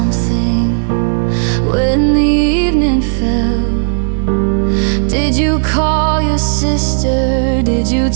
when the evening fell? Did you call your sister? Did you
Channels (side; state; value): left; silent; digital silence